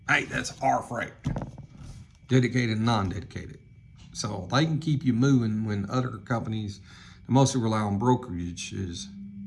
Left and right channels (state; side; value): identical; both; correlation 1.00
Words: Hey, that's our freight. Dedicated and non-dedicated. So they can keep you moving when other companies that mostly rely on brokerages